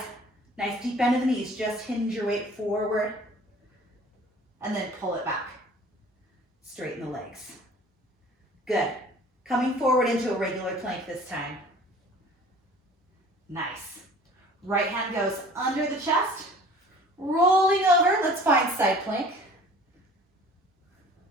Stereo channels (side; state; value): both; normal; correlation 0.48